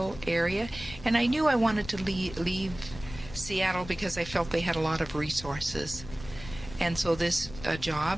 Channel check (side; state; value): left; noise; rumble, 14 dB below the sound